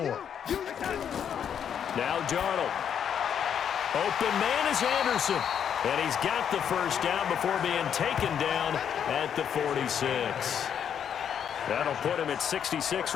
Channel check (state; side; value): quieter; right; 8.4 dB